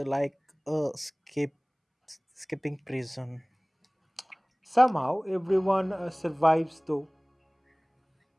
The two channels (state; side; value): identical; both; correlation 1.00